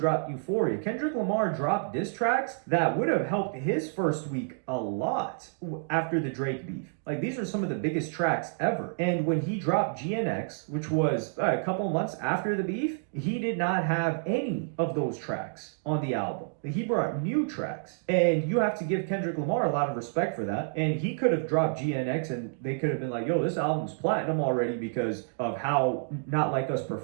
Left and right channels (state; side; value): silent; left; digital silence